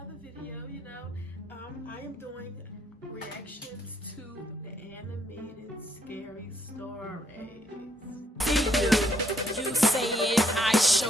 video. I am doing reactions to the animated scary stories. You say it, I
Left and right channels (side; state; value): both; normal; correlation 0.73